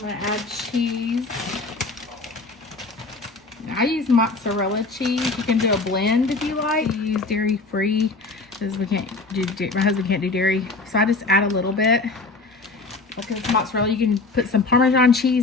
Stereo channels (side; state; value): right; quieter; 3.6 dB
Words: I'm gonna add cheese. I use mozzarella cheese. You can do a blend if you like. You use dairy free, because my husband can't do dairy. So I just add a little bit. Because mozzarella, you can put some Parmesan